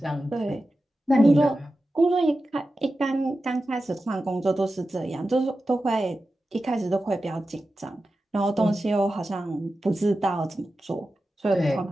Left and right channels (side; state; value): both; normal; correlation 0.92